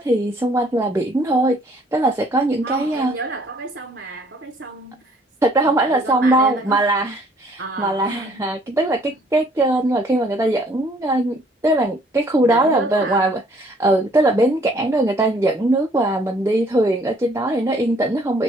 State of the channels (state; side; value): normal; both; correlation 0.61